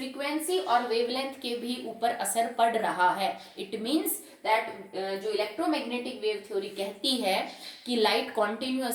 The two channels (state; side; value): identical; both; correlation 1.00